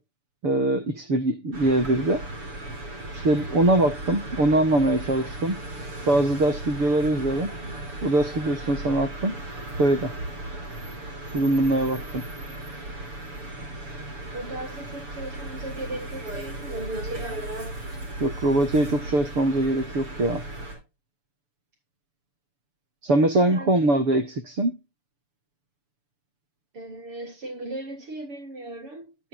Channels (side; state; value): left; late; 6.9 ms